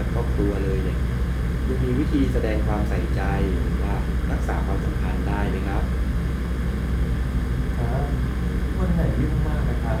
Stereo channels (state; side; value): identical; both; correlation 1.00